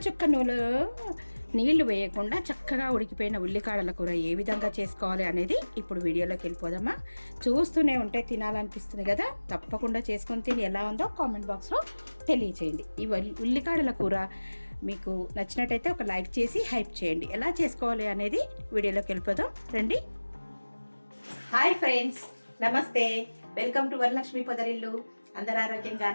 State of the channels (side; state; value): both; inverted; correlation -1.00